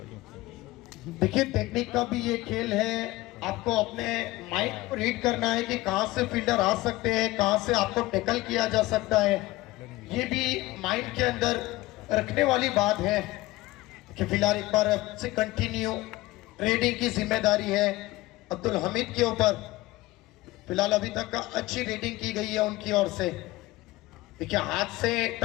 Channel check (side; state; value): right; quieter; 18.7 dB